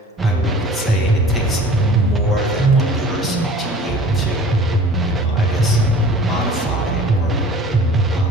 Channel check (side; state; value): both; normal; correlation 0.45